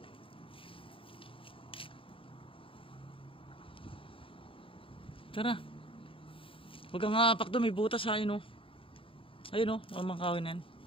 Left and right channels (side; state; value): right; late; 0.26 ms